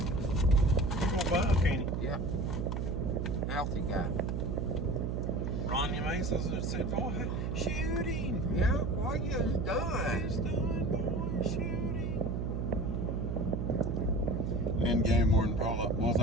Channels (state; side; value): noise; right; hum, 1 dB below the sound